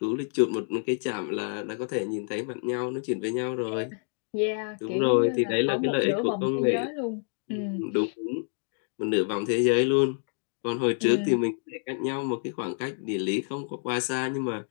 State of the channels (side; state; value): right; silent; 59 dB below the other